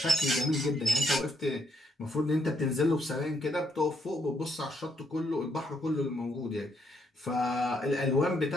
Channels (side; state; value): both; normal; correlation 0.74